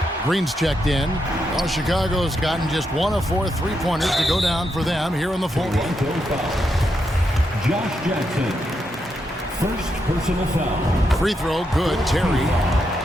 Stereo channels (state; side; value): normal; both; correlation 0.82